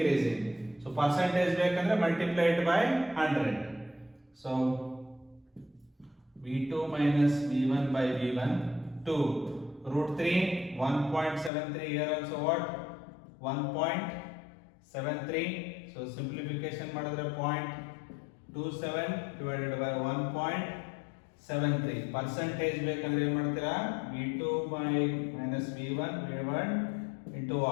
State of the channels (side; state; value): right; drops out; at 11.5 s